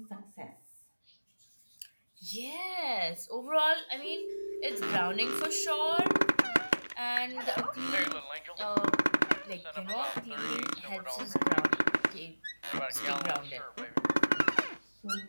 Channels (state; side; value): inverted; both; correlation -1.00